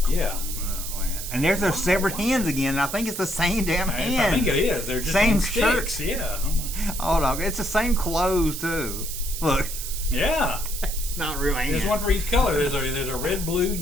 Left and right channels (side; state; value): right; noise; hiss, 7 dB below the sound